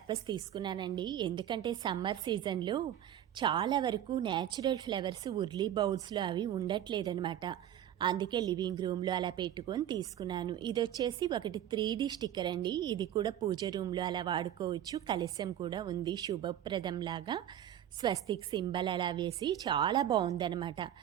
తీసుకున్నానండి. ఎందుకంటే సమ్మర్ సీజన్లో చాలా వరకు న్యాచురల్ ఫ్లవర్స్ ఉర్లీ బౌల్స్లో అవి ఉండట్లేదనమాట. అందుకే లివింగ్ రూమ్లో అలా పెట్టుకొని తీసుకున్నాను. ఇది వచ్చేసి ఒకటి 3D స్టిక్కర్ అండి. ఇది కూడా పూజ రూమ్లో అలా వాడుకోవచ్చు. కలశం కూడా ఉంది, శుభప్రదంలాగా స్వస్తిక్ సింబల్ అలా వేసి చాలా బాగుందనమాట.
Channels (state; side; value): quieter; left; 11.1 dB